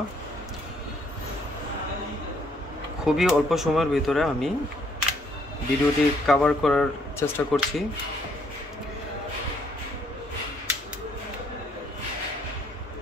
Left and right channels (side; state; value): both; normal; correlation 0.68